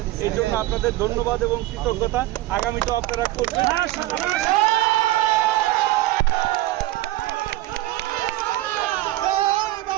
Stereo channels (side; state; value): left; quieter; 16.8 dB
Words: এই জন্য আপনাদের ধন্যবাদ এবং কৃতজ্ঞতা। আগামীতেও আপনারা করবেন।